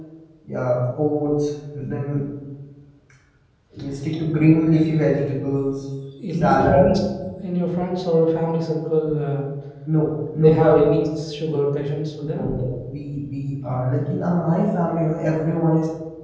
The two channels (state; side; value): identical; both; correlation 1.00